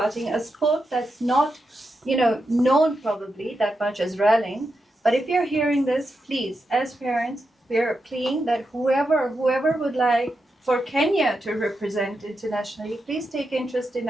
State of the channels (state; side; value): normal; both; correlation 0.87